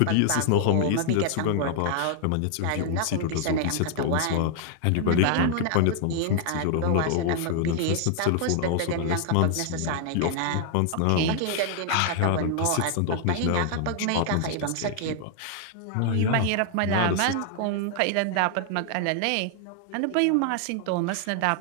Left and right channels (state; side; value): different; both; correlation 0.00